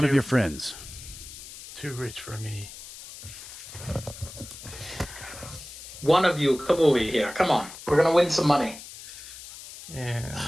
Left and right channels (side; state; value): left; noise; hiss, 14 dB below the sound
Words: of your friends? Too rich for me. One of you, come over here. Come on. We're going to win some money. And